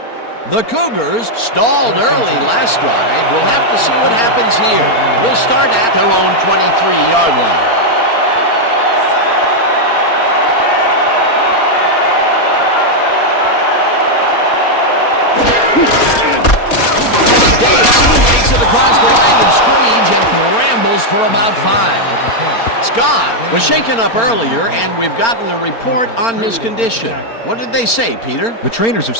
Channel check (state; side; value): late; right; 4.4 ms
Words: The Cougars stalled early last drive. We'll have to see what happens here. We'll start at their own 23-yard line. Takes it across the line of scrimmage and rambles for about 5. Scott was shaken up earlier, and we've gotten a report on his condition. What did they say, Peter? The trainers have